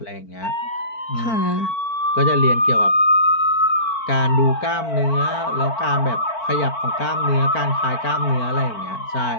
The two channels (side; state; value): right; late; 4.5 ms